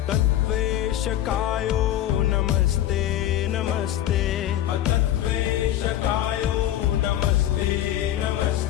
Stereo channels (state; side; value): quieter; right; 12.4 dB